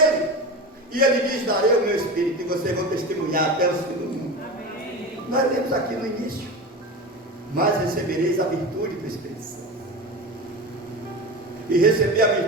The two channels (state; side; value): normal; both; correlation 0.26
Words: E Ele diz: darei o meu Espírito e vocês vão testemunhar até os fins do mundo. Amém. Nós lemos aqui no início: mas recebereis a virtude do Espírito Santo. E receber a